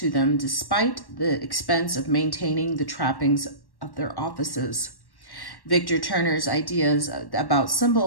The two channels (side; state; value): right; late; 1.1 ms